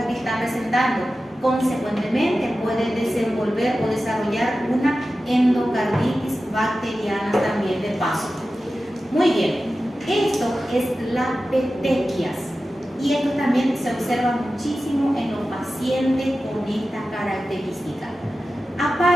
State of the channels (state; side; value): normal; both; correlation 0.94